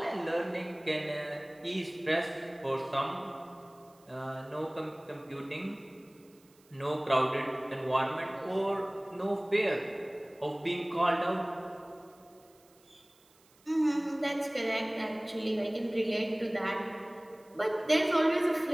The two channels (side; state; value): right; noise; hiss, 30 dB below the sound